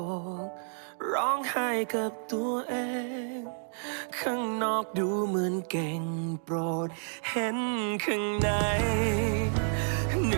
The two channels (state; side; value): silent; left; 58 dB below the other